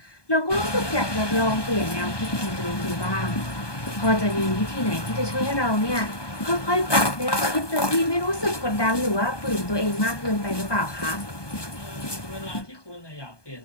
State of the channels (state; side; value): late; right; 1.2 ms